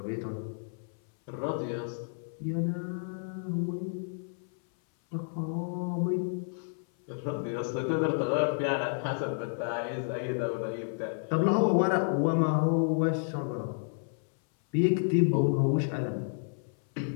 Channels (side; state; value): right; silent; 57 dB below the other